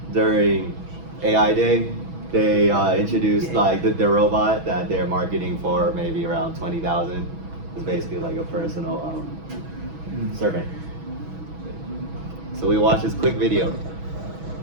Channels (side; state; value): left; late; 6.1 ms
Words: during AI Day, they introduced like their robot that they're marketing for maybe around 20,000. It's basically like a personal servant. So we watched this quick video.